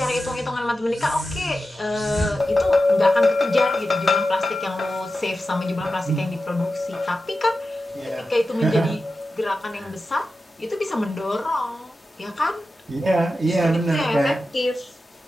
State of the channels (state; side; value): normal; both; correlation 0.92